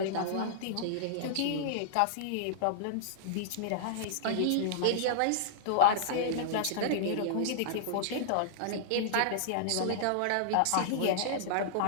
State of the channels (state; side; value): different; both; correlation -0.02